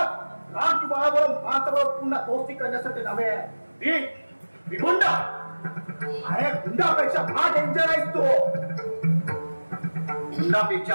राम की बाळाबरोबर माणसाबरोबर पुन्हा दोस्ती करण्यासाठी नव्हे. मी गुंडा. अरे गुंडापेक्षा हा डेंजर आहेस तू.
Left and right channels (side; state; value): both; inverted; correlation -1.00